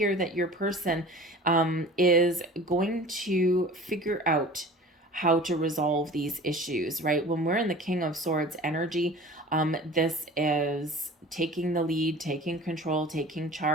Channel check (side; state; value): both; normal; correlation 0.41